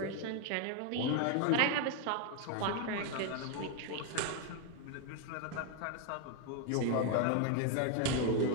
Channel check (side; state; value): both; different; correlation 0.01